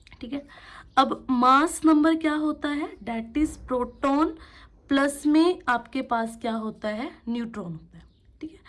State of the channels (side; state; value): both; identical; correlation 1.00